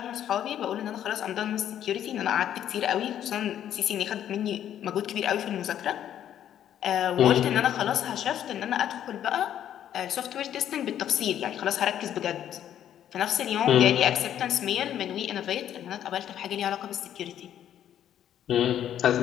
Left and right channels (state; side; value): quieter; right; 10.5 dB